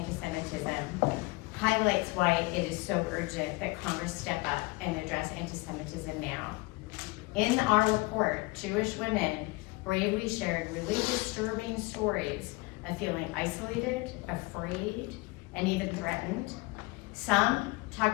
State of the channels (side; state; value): right; quieter; 24.5 dB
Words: highlights why it is so urgent that Congress step up and address anti-Semitism now. In our report, Jewish women bravely shared really disturbing stories of feeling isolated, afraid, and even threatened. Some